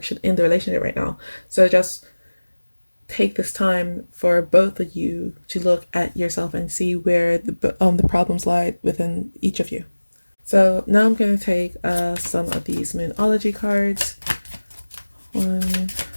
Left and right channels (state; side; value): inverted; both; correlation -1.00